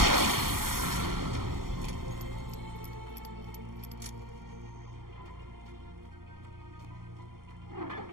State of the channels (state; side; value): late; left; 0.92 ms